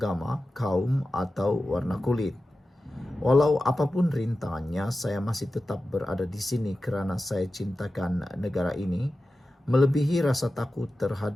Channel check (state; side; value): normal; both; correlation 0.93